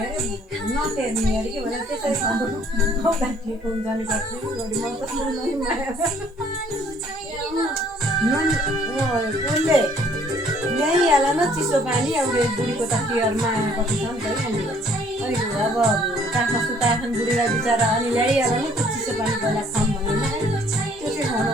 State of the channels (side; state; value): both; normal; correlation 0.60